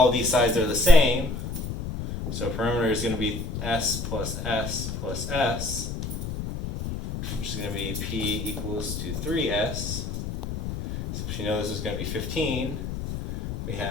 of these sides are the same. So perimeter is going to be S plus S plus S, which is going to be P equals to 3S. So if you know this is going to be 15, we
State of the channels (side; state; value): left; noise; rumble, 5 dB below the sound